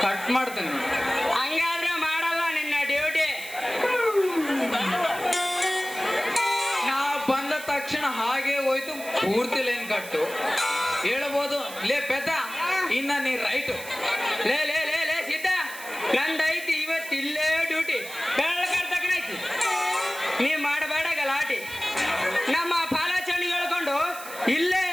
ಕಟ್ ಮಾಡ್ತೀನಿ. ಹಂಗಾದ್ರೆ ಮಾಡಲ್ಲ ನಿನ್ನ ಡ್ಯೂಟಿ. ನಾ ಬಂದ ತಕ್ಷಣ ಹಾಗೆ ಹೋಯ್ತು ಪೂರ್ತಿ ಲೈನ್ ಕಟ್ಟು ಹೇಳ್ಬೋದು. ಲೇ ಪೆದ್ದ, ಇನ್ನ ನೀ ರೈಟು. ಲೇ ಲೇ ಲೇ ಲೇ ಸಿದ್ಧ, ನಂದೈತಿ ಇವತ್ತಿಲ್ಲೇ ಡ್ಯೂಟಿ. ಬೆಳಕರ್ತಕ್ಕನೈತಿ, ನೀ ಮಾಡಬೇಡ ಗಲಾಟಿ. ನಮ್ಮ ಪಾಲಾಚರಣಿ ಹೇಳ್ಕೊಂಡು ಇಲ್ಲೇ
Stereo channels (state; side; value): noise; right; hiss, 13 dB below the sound